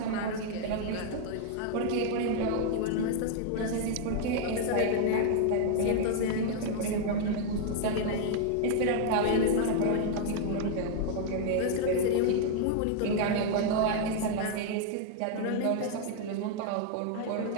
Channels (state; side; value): different; both; correlation 0.00